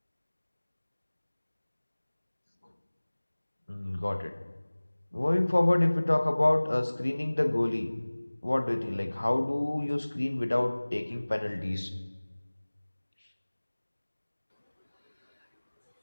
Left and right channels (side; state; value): both; inverted; correlation -1.00